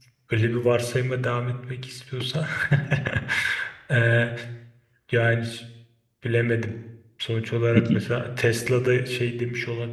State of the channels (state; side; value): identical; both; correlation 1.00